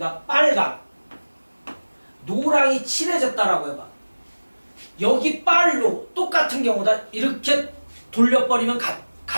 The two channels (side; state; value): both; inverted; correlation -1.00